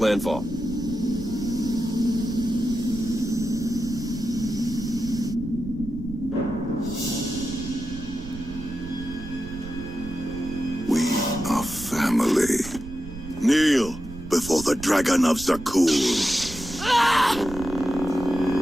Kneel before the Dragon of Zakuul.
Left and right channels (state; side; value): noise; right; rumble, 12 dB below the sound